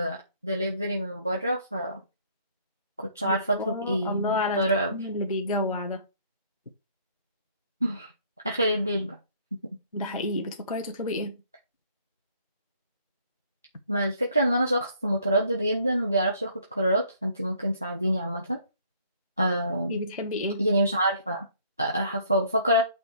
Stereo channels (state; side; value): inverted; both; correlation -0.60